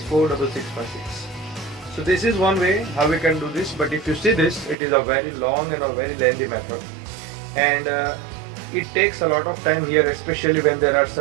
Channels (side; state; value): left; drops out; at 4.8 s